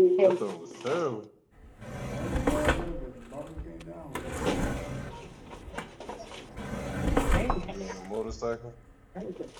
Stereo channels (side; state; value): both; identical; correlation 1.00